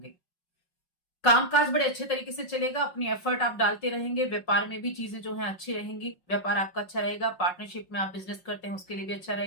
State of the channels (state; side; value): late; right; 5.5 ms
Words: कामकाज बड़े अच्छे तरीके से चलेगा, अपनी एफर्ट आप डालते रहेंगे, व्यापार में भी चीजें जो है अच्छी रहेंगी, व्यापार आपका अच्छा रहेगा। पार्टनरशिप में आप बिजनेस करते हैं उसके लिए भी अच्छा